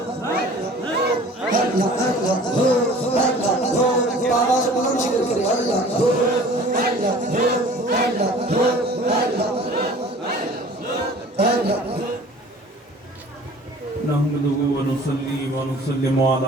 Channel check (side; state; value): both; normal; correlation 0.47